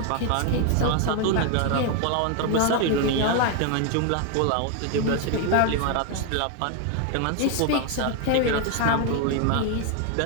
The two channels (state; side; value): different; both; correlation 0.01